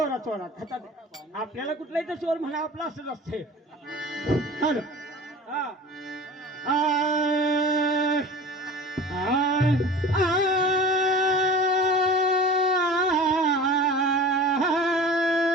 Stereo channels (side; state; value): both; normal; correlation 0.38